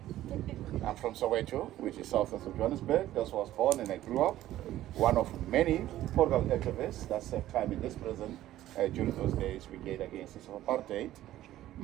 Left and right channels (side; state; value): left; quieter; 14.0 dB